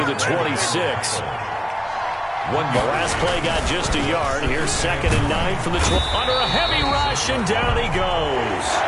the 26. The last play got just a yard. Here's 2nd and 9 from the 12. Under a heavy rush, and down he goes.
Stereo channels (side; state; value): both; identical; correlation 1.00